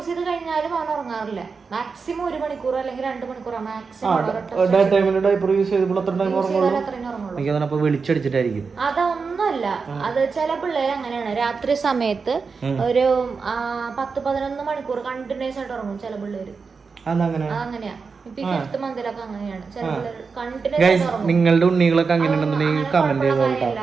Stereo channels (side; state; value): left; quieter; 5.0 dB